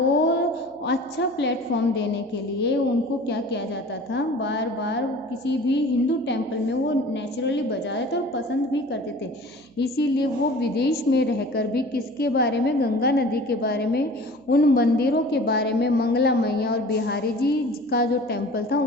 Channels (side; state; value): right; noise; hum, 29 dB below the sound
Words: अच्छा प्लेटफॉर्म देने के लिए उनको क्या किया जाता था? बार बार किसी भी हिंदू टेम्पल में वो नेचुरली बजाते थे और पसंद भी करते थे। इसीलिए वो विदेश में रहकर भी किसके बारे में? गंगा नदी के बारे में, उन मंदिरों के बारे में, मंगला मैया और बिहारी जी का जो टेम्पल था